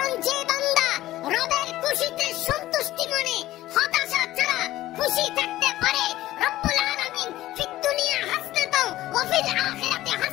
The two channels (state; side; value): quieter; right; 15.5 dB